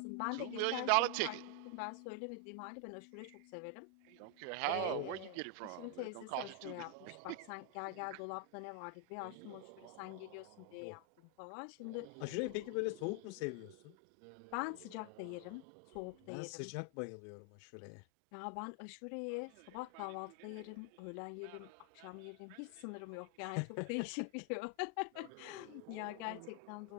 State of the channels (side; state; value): both; different; correlation 0.00